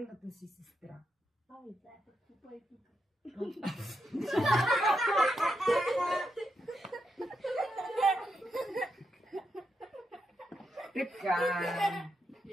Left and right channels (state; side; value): normal; both; correlation 0.83